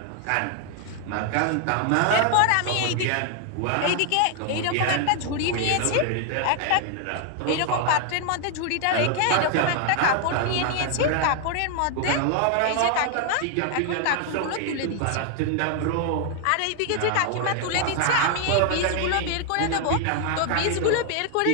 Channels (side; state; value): both; different; correlation 0.00